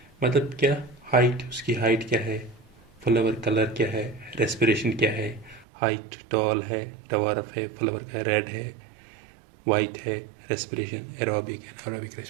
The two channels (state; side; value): drops out; left; at 5.7 s